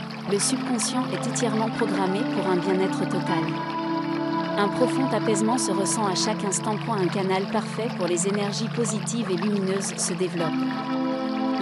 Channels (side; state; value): both; identical; correlation 1.00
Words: Le subconscient est entièrement programmé pour un bien-être total. Un profond apaisement se ressent à chaque instant. Un canal parfait pour les énergies positives et lumineuses se développe.